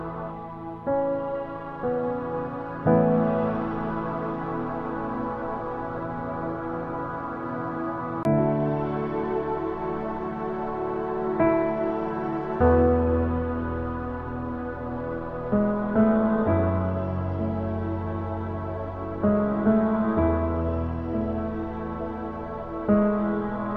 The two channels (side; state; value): both; identical; correlation 1.00